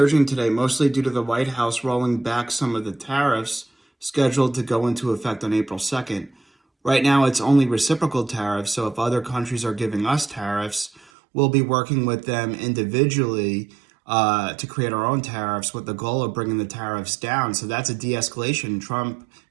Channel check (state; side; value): drops out; left; at 11.1 s